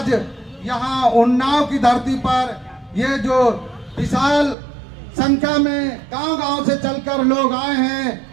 यहाँ उन्नाव की धरती पर ये जो विशाल संख्या में गांव-गांव से चलकर लोग आए हैं,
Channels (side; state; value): left; drops out; at 4.5 s